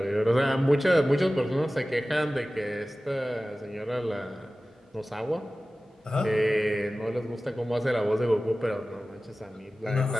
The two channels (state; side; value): normal; both; correlation 0.96